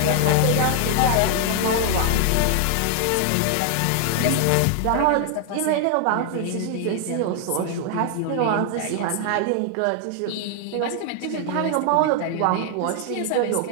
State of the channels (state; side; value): different; both; correlation 0.00